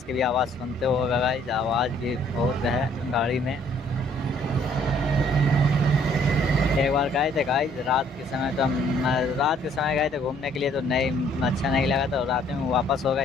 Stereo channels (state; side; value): normal; both; correlation 0.62